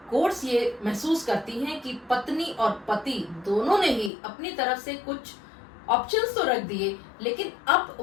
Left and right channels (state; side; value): drops out; right; at 4.1 s